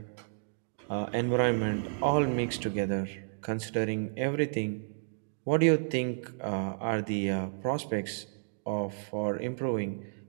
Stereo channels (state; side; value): silent; left; digital silence